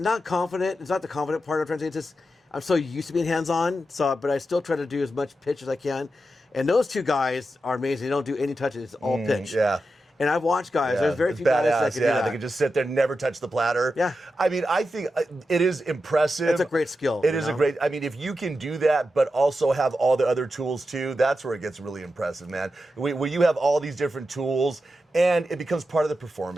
confident. It's not the confident part of translating. It's just I'm so used to being hands on. But I still try to do as much pitch as I can. And those two guys are amazing. They don't do any touches. It's all pitch. Yeah. And I've watched guys. Yeah, There's very it's few guys that badass. can do that. They can just sit there, never touch the platter. Yeah. I mean, I think it is impressive. It's a great skill. It is a great. I mean, if you can do that, but also have all the other tools too, that's where it gets really impressive, man. Where you have all these different tools, and it becomes part of the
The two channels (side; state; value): both; normal; correlation 0.89